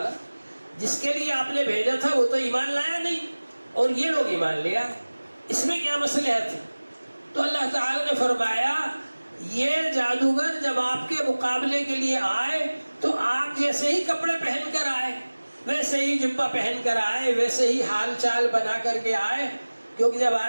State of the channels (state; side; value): inverted; both; correlation -1.00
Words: جس کے لیے آپ نے بھیجا تھا وہ تو ایمان لایا نہیں اور یہ لوگ ایمان لیا، اس میں کیا مصلحت ہے؟ تو اللہ تعالیٰ نے فرمایا یہ جادوگر جب آپ کے مقابلے کے لیے آئے تو آپ جیسے ہی کپڑے پہن کر آئے، ویسے ہی جبہ پہن کر آئے، ویسے ہی حال چال بنا کر کے آئے. کیونکہ جب